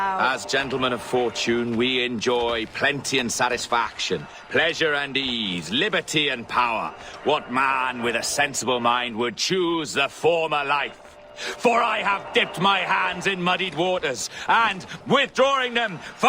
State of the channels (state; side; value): identical; both; correlation 1.00